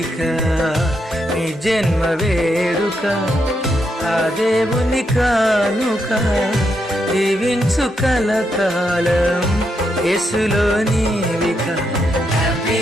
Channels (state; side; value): normal; both; correlation 0.81